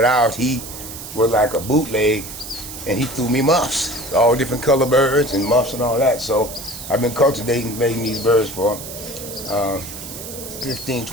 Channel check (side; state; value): right; noise; hiss, 11 dB below the sound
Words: out. He was like a bootleg, and he threw me muffs, all different color birds and muffs and all that. So I've been cultivating, making these birds for 15,